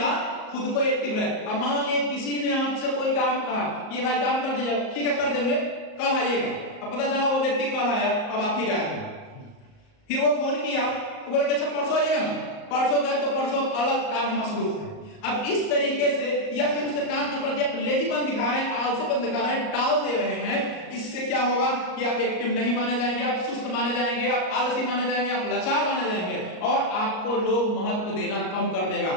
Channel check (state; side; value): late; right; 38 ms